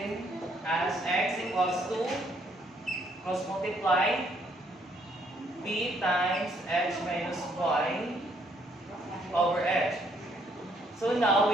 as x equals to cross multiply b times h minus y over h. So now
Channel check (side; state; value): both; normal; correlation 0.69